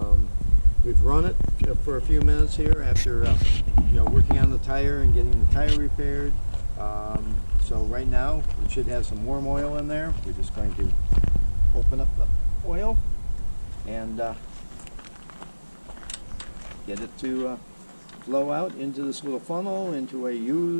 We've run it for a few minutes here after working on the tire and getting the tire repaired. So right now it should have some warm oil in there. We're just going to open up the oil and get it to flow out into this little funnel into a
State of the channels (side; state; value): both; inverted; correlation -1.00